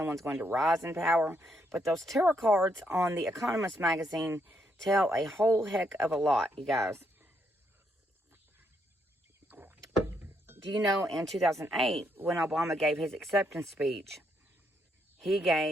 going to rise in power. But those tarot cards on The Economist magazine tell a whole heck of a lot, you guys. Do you know in 2008, when Obama gave his acceptance speech, he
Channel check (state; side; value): normal; both; correlation 0.75